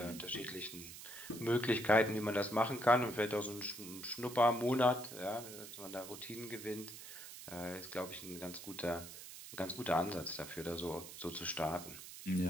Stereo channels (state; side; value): noise; right; hiss, 12 dB below the sound